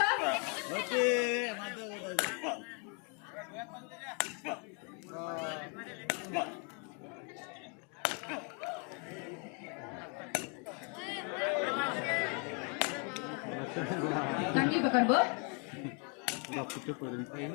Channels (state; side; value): quieter; right; 33.5 dB